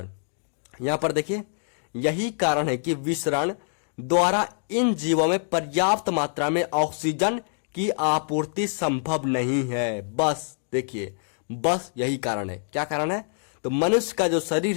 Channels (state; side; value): silent; right; digital silence